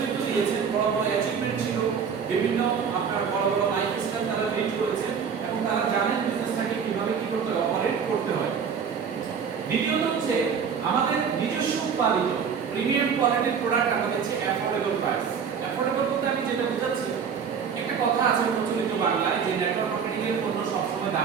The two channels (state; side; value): quieter; left; 6.7 dB